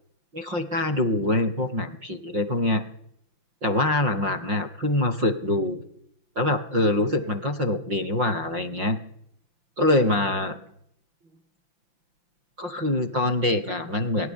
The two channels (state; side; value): late; left; 5.6 ms